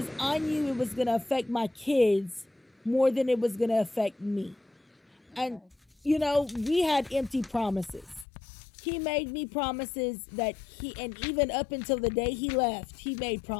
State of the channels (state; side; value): drops out; right; at 8.2 s